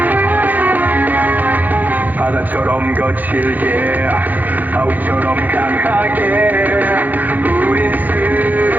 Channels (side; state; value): left; late; 0.083 ms